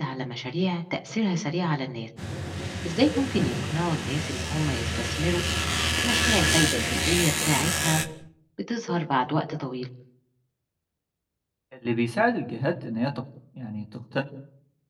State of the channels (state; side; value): identical; both; correlation 1.00